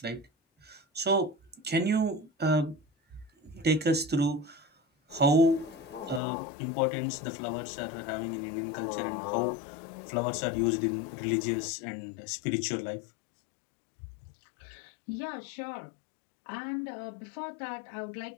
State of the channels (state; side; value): drops out; right; at 6.2 s